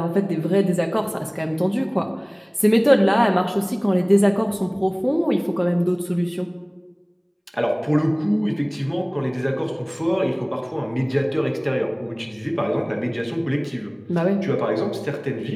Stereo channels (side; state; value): both; identical; correlation 1.00